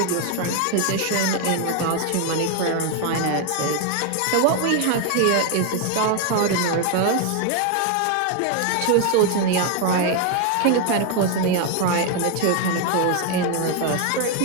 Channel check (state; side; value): different; both; correlation 0.01